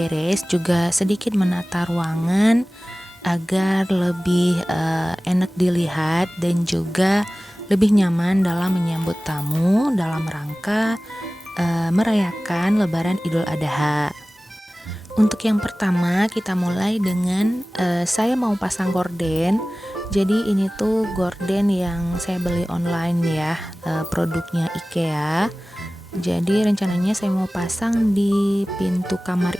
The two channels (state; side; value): normal; both; correlation 0.97